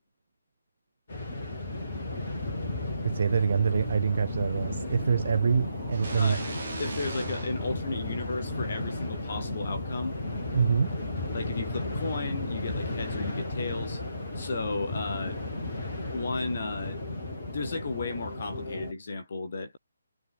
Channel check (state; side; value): inverted; both; correlation -0.78